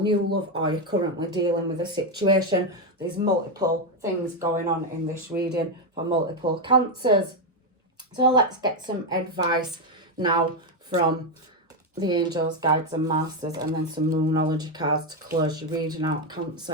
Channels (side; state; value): both; normal; correlation 0.06